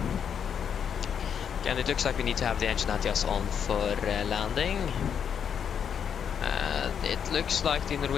And it looks like we need to have the engine anti-gas on for landing. It looks like the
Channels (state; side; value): quieter; right; 7.8 dB